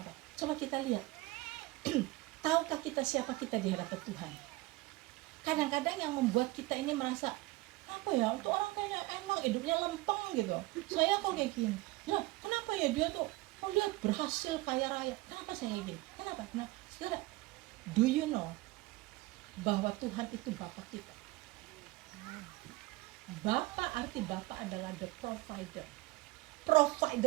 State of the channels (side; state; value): left; quieter; 20.5 dB